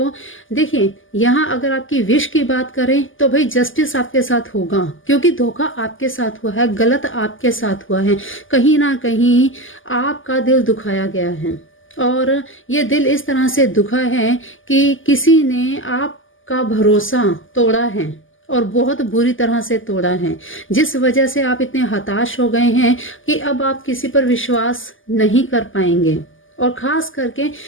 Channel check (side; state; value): right; late; 0.58 ms